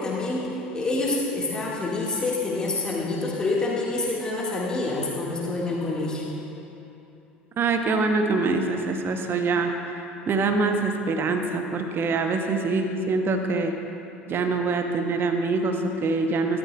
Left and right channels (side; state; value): both; normal; correlation 0.49